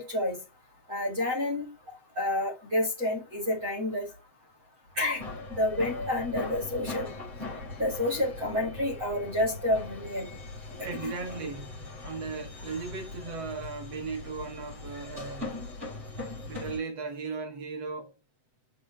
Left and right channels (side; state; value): left; late; 7.8 ms